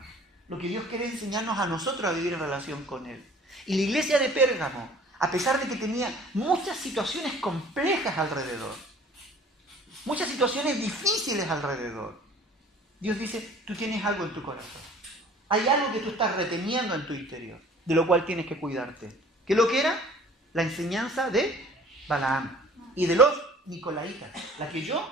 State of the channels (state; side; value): normal; both; correlation 0.50